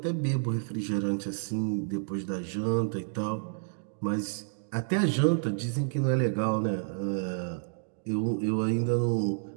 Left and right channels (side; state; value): left; silent; digital silence